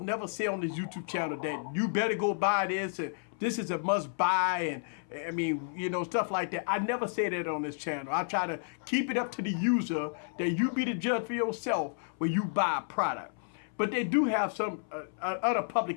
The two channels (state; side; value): silent; right; 57 dB below the other